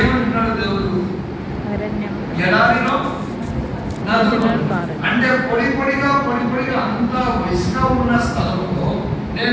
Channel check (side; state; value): both; identical; correlation 1.00